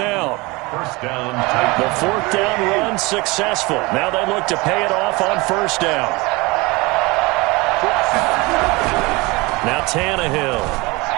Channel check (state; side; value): quieter; left; 24.3 dB